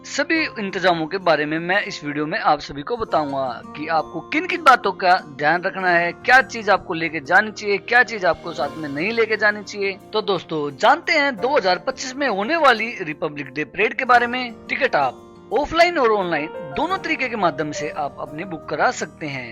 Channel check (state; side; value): identical; both; correlation 1.00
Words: सभी इंतजामों के बारे में मैं इस वीडियो में आप सभी को बताऊंगा कि आपको किन किन बातों का ध्यान रखना है, क्या चीज आपको लेके जानी चाहिए, क्या चीज आपको साथ में नहीं लेके जानी चाहिए। तो दोस्तों जानते हैं 2025 में होने वाली रिपब्लिक डे परेड के बारे में। टिकट आप ऑफलाइन और ऑनलाइन दोनों तरीके के माध्यम से आप अपने बुक करा सकते